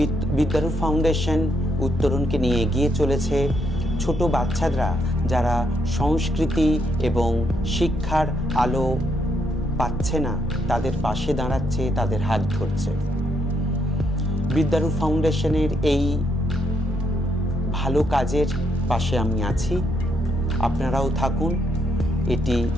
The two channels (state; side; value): normal; both; correlation 0.76